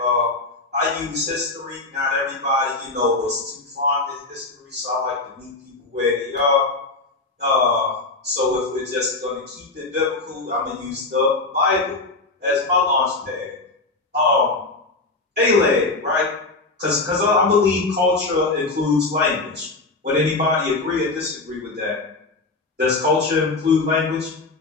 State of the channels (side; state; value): right; quieter; 3.4 dB